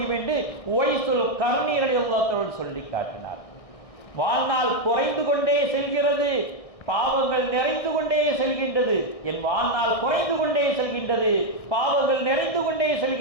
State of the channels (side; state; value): right; late; 1.6 ms